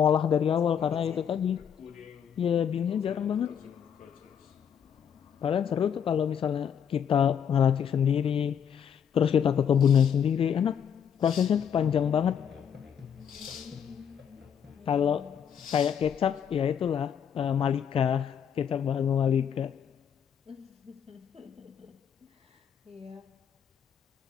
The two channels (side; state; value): right; quieter; 8.1 dB